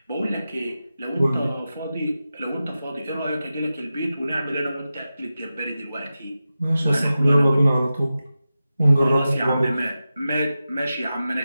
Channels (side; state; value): both; inverted; correlation -0.93